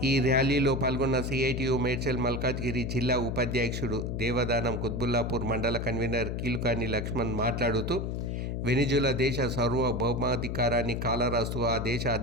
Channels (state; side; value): noise; left; hum, 3 dB below the sound